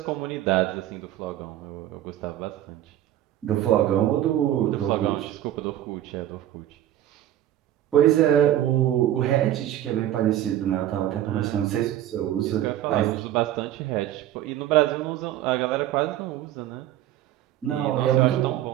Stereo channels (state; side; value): quieter; left; 12.6 dB